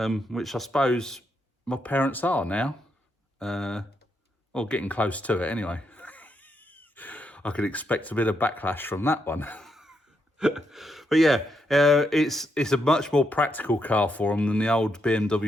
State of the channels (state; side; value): normal; both; correlation 0.80